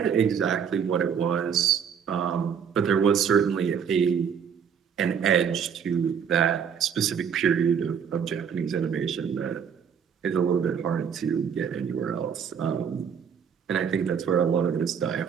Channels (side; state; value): left; quieter; 7.4 dB